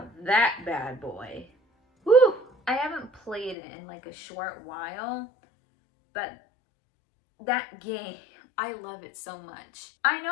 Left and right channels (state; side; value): drops out; right; at 3.6 s